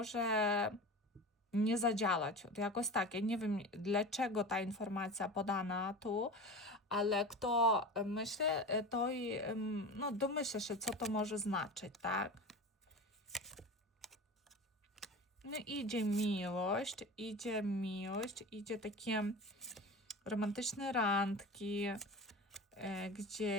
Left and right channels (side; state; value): both; normal; correlation 0.31